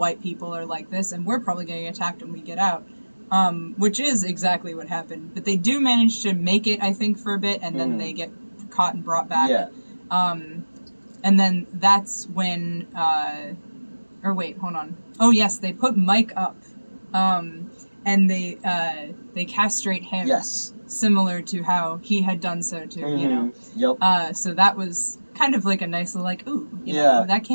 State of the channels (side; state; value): both; inverted; correlation -1.00